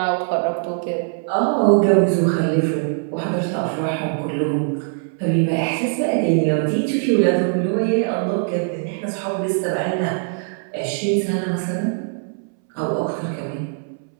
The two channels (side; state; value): left; silent; 65 dB below the other